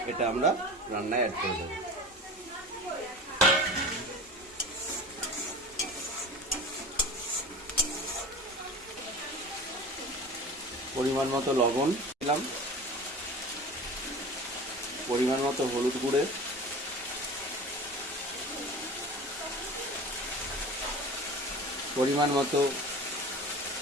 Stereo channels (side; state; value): both; normal; correlation 0.35